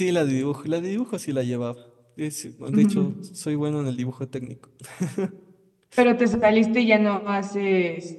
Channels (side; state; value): both; identical; correlation 1.00